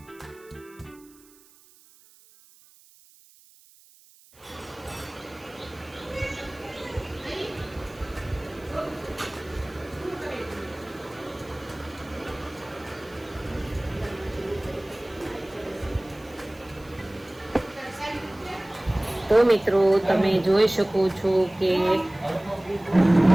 તો મિત્રો તમે જોઈ શકો છો કે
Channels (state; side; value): noise; right; hiss, 27 dB below the sound